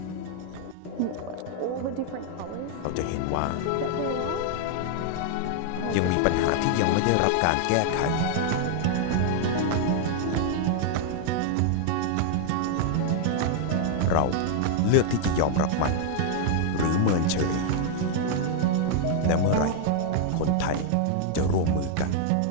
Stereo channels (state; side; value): different; both; correlation 0.00